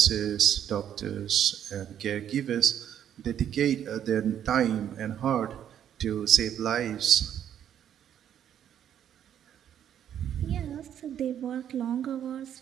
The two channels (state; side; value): quieter; left; 9.8 dB